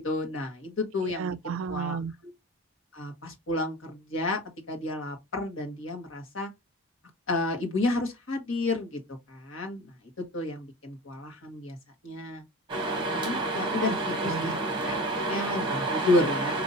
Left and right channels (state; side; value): normal; both; correlation 0.35